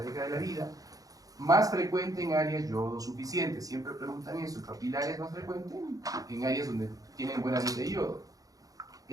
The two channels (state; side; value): late; left; 0.17 ms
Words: de la vida. Más frecuente en áreas yodo suficientes. Siempre preguntan eso. El papilar es más frecuente en áreas donde tienen buena nivel de yodo.